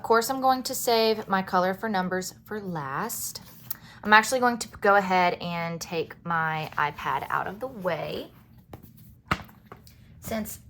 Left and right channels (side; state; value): both; identical; correlation 1.00